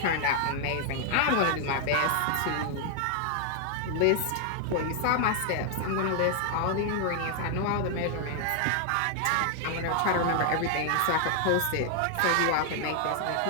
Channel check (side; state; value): both; different; correlation 0.00